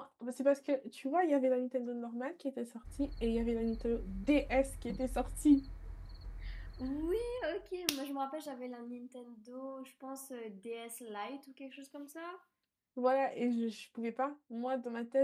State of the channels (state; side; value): identical; both; correlation 1.00